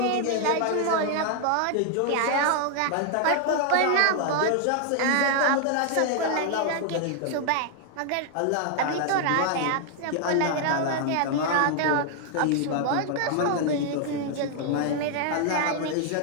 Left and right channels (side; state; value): both; different; correlation 0.00